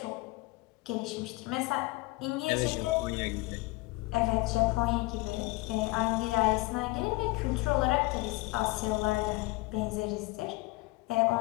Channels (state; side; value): quieter; right; 22.8 dB